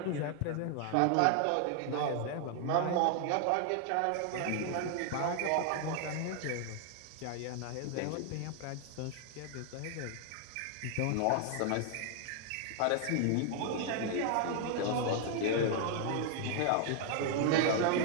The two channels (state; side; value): different; both; correlation 0.00